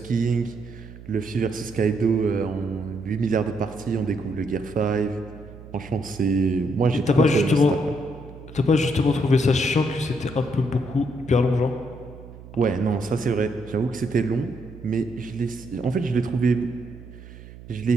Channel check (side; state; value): right; noise; hum, 17 dB below the sound